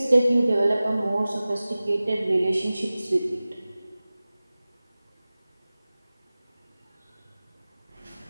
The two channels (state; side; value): inverted; both; correlation -0.97